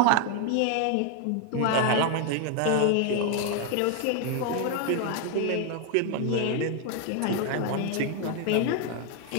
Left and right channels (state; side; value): different; both; correlation 0.01